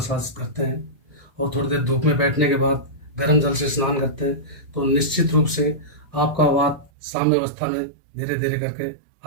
करते हैं और थोड़ी देर धूप में बैठने के बाद गर्म जल से स्नान करते हैं तो निश्चित रूप से आपका वात साम्य अवस्था में धीरे धीरे करके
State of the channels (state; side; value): drops out; left; at 6.9 s